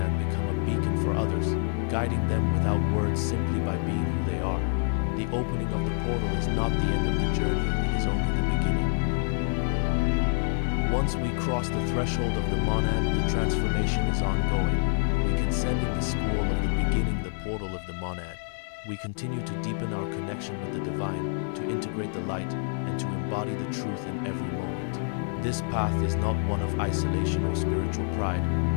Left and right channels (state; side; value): silent; right; 60 dB below the other